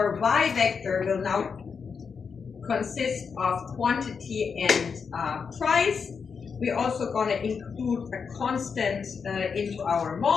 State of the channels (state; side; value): quieter; right; 5.9 dB